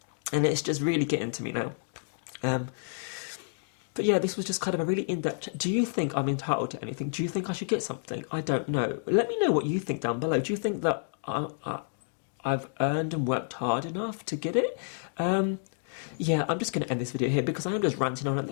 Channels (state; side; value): silent; right; digital silence